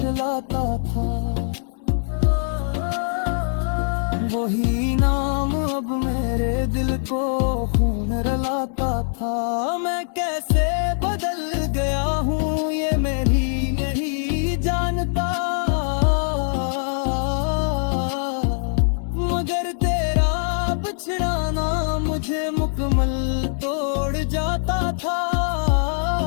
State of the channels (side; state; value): right; silent; digital silence